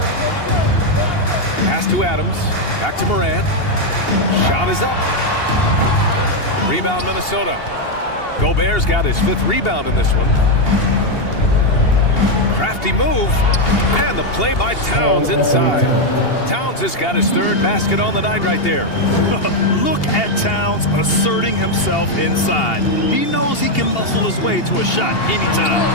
Pass to Adams. Back to Morant. Shot is up. Rebound Minnesota. Gobert's got his 5th rebound in this one. Crafty move. And the play by Towns inside. Towns has got his 3rd basket on the night right there. Look at Towns asserting himself inside. He knows he can muscle his way to a shot anytime.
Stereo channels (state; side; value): late; right; 2.8 ms